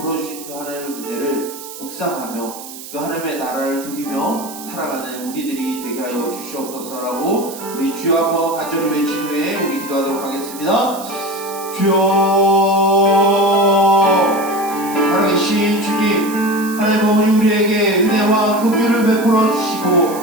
주신 그 하나님의 은혜를 묵상하며 그 하나님의 나라를 누리며 살아가는 우리들이 되게 하여 주시옵소서라고 우리 주여 한번 간절히 외친 후에 우리 기도하도록 하겠습니다. 주여, 살아계신 주님, 하나님 아버지 우리에게 은혜와 긍휼을 베풀어 주시고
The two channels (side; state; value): right; noise; hiss, 14 dB below the sound